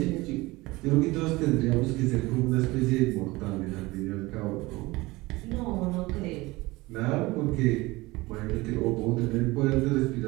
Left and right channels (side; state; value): left; quieter; 21.3 dB